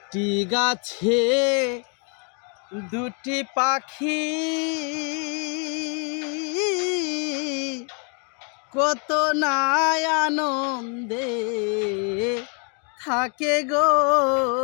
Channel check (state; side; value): quieter; right; 38.6 dB